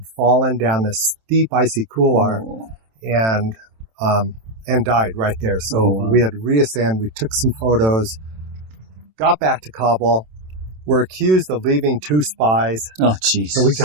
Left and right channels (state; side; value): late; left; 27 ms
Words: fallen down this steep icy couloir and died right there. So we had to reascend. We took some photos, got back to Kabul. We're accused of leaving 2 spies. Oh, jeez. So we